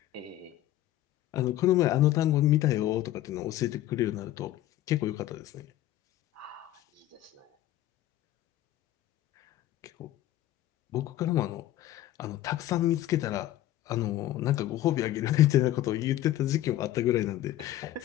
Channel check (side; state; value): right; quieter; 14.0 dB